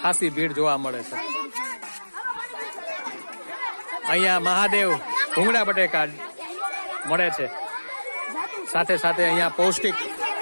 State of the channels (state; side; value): inverted; both; correlation -1.00